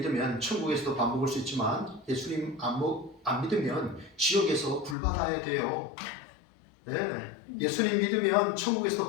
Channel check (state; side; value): drops out; right; at 5.0 s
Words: 천국에서도 밥 먹을 수 있지만 예수님 안 믿으면 지옥에서 불 받아야 돼요. 네, 예수님 믿으면 천국에서도